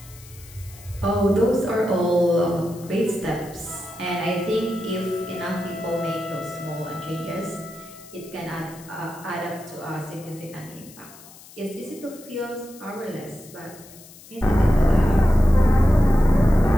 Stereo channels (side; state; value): left; noise; hiss, 21 dB below the sound